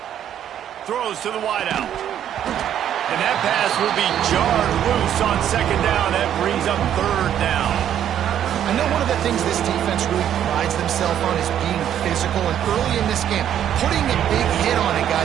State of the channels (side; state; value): left; quieter; 10.2 dB